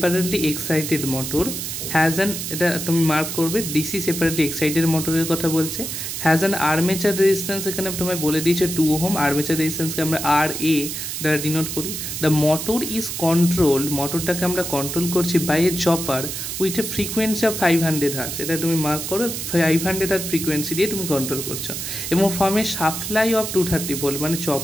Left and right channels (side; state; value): right; noise; hiss, 5 dB below the sound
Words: excited motor has an, এটা তুমি মার্ক করবে, ডিসি সেপারেটলি এক্সাইটেড মোটরের কথা বলছে, হ্যাজ অ্যান আর্মেচার রেজিস্ট্যান্স, এখানে তোমায় বলে দিয়েছে 2 ওহম। আর্মেচার রেজিস্ট্যান্সকে আমরা আর এ দ্বারা ডিনোট করি। দ্য মোটর ইজ কন্ট্রোল, মোটরটাকে আমরা কন্ট্রোল করছি by a chopper with a frequency of 500 hertz, এটা তুমি মার্ক করো, 500 হার্টজ ফ্রিকোয়েন্সি দিয়ে তুমি কন্ট্রোল করছো, এবং from a supply of 230 volt, মানে